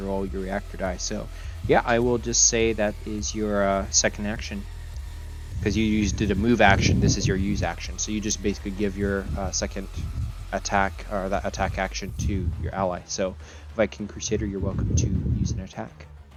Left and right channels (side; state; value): both; identical; correlation 1.00